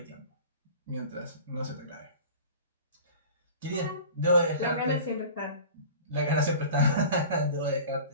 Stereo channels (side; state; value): both; inverted; correlation -0.40